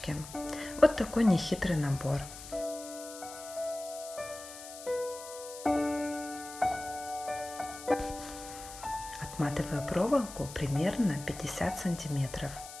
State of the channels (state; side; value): noise; left; hiss, 13 dB below the sound